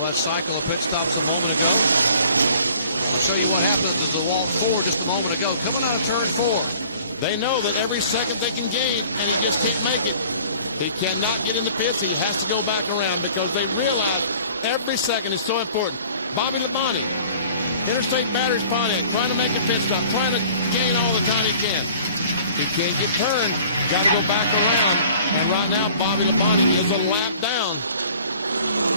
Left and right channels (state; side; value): inverted; both; correlation -0.51